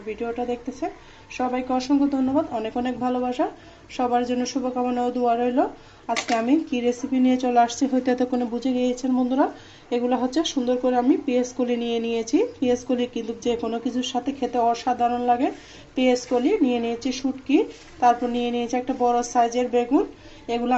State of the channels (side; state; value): both; identical; correlation 1.00